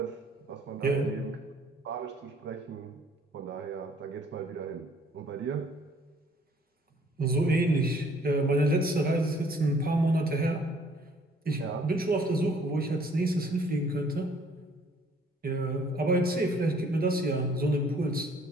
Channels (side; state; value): both; normal; correlation 0.59